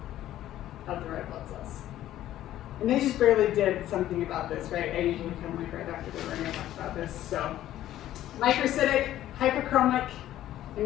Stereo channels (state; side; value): quieter; right; 13.1 dB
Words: of the red blood cells. And they just barely did something about this, right? I usually come like right after they were going to talk about this. So microcytic, hyperchromic